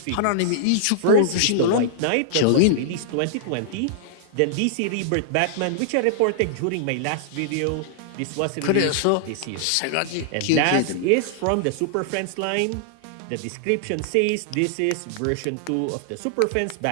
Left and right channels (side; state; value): both; different; correlation -0.01